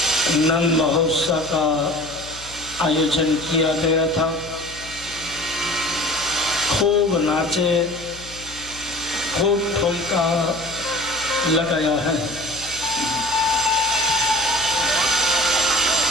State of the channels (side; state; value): left; noise; hum, 18 dB below the sound